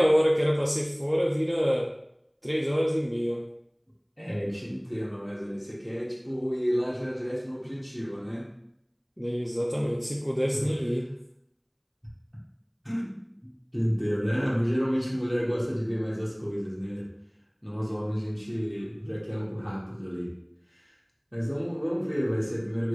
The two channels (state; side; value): identical; both; correlation 1.00